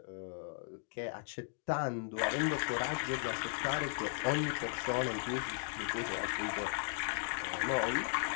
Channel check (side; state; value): right; silent; digital silence